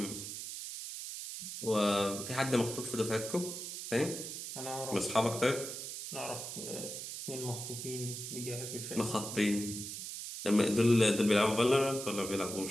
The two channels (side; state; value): right; noise; hiss, 7 dB below the sound